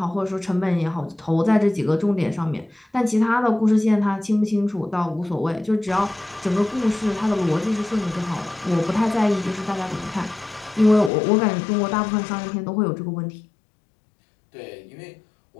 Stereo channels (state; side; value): drops out; right; at 11.1 s